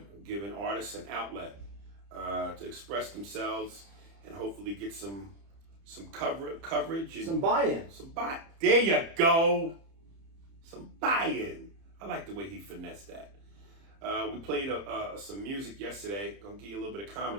giving artists an outlet to express themselves and hopefully get some coverage. And some buy-in. There you go. Some buy-in. I like the way he finessed that. We played some music yesterday. Gonna give you a little bit of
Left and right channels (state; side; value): late; left; 30 ms